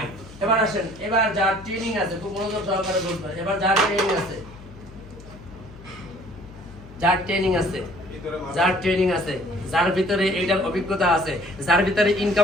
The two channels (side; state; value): left; noise; hum, 19 dB below the sound